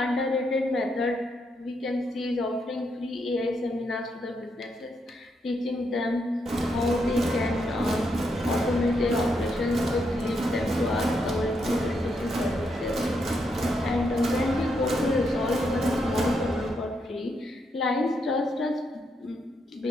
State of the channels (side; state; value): both; normal; correlation 0.79